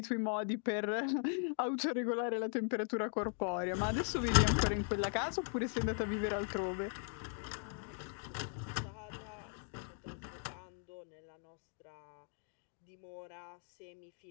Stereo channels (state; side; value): silent; right; 52 dB below the other